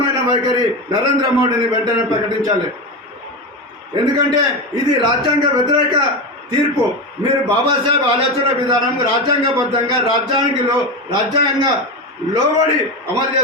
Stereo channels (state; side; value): normal; both; correlation 0.19